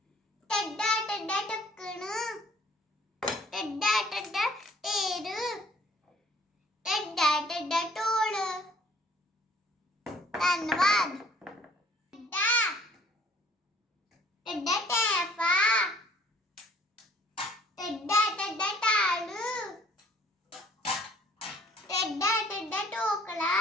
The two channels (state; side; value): normal; both; correlation 0.57